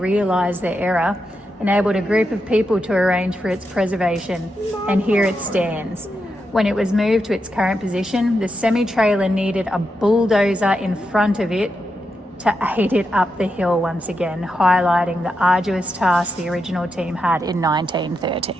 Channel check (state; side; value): normal; both; correlation 0.85